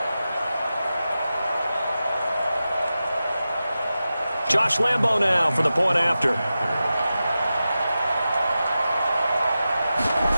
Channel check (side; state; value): both; inverted; correlation -0.93